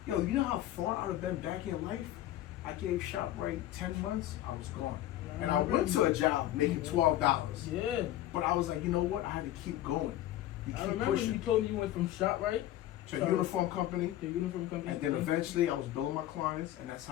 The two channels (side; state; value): right; quieter; 13.6 dB